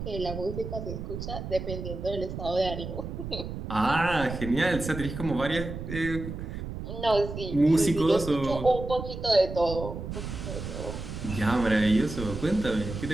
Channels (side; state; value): right; noise; rumble, 7 dB below the sound